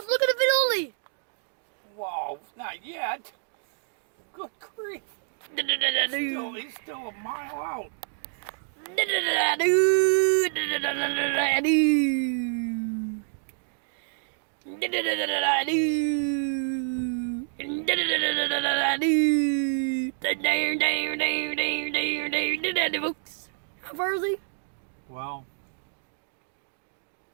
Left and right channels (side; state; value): left; silent; digital silence